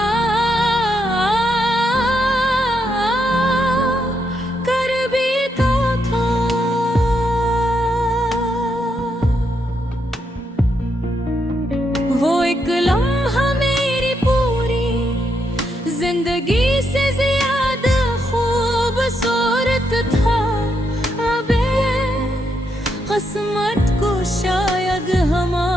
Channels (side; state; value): both; normal; correlation 0.79